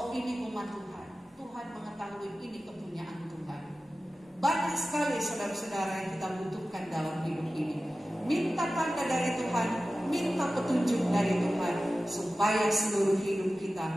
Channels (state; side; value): normal; both; correlation 0.95